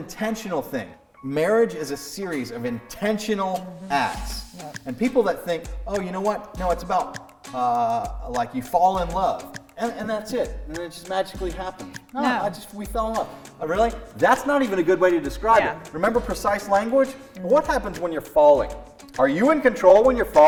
thing. Marriage is a series of intentional acts. Yep. And people that think, oh, you know what? No, it's about like you fall in love. And that's it. And it just magically happens. No. We fell in love. Really? That's not even a good way to describe it. Remember precise language? What happens when you're falling? Are you in control when you're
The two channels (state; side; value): identical; both; correlation 1.00